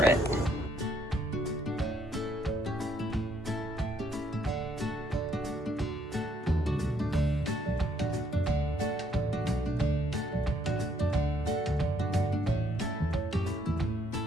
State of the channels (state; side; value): normal; both; correlation 0.69